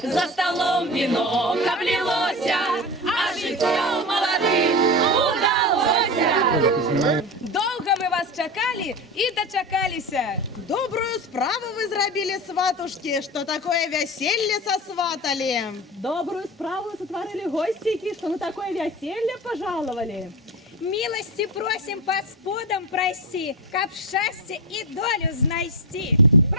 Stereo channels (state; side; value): normal; both; correlation 0.23